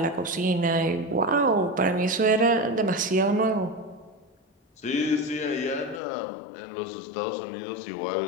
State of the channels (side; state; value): right; drops out; at 6.0 s